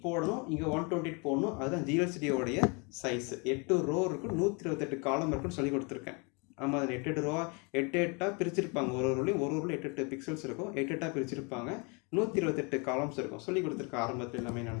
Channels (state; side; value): quieter; right; 32.0 dB